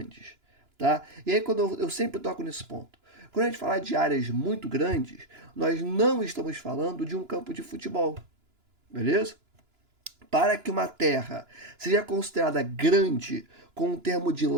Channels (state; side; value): late; left; 2.9 ms